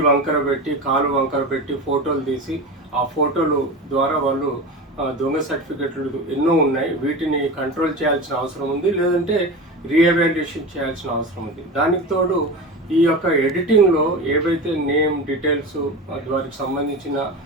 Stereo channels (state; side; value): normal; both; correlation 0.27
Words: వంకర పెట్టి కాలు వంకర పెట్టి ఫోటోలు తీసి ఆ ఫోటోలు ద్వారా వాళ్ళు దొంగ సర్టిఫికేట్లు ఎన్నో ఉన్నాయి. వీటిని కంట్రోల్ చేయాల్సిన అవసరం ఉంది, లేదంటే రీఎవాల్యుయేషన్ చేయాల్సిన అవసరం ఉంది. దానికి తోడు ఈ యొక్క ఎడిటింగ్లో ఏవైతే నేమ్ డీటెయిల్స్ వారికి సంబంధించిన